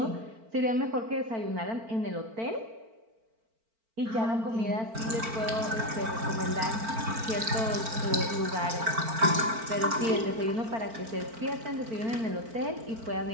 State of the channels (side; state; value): left; late; 4.4 ms